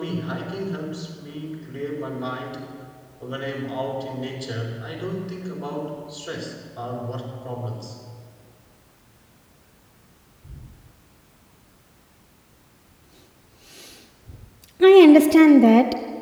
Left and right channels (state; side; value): identical; both; correlation 1.00